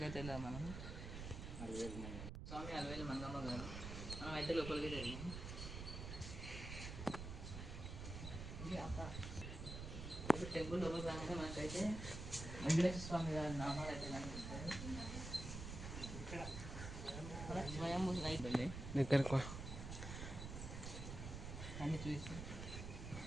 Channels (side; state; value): right; noise; rumble, 7 dB below the sound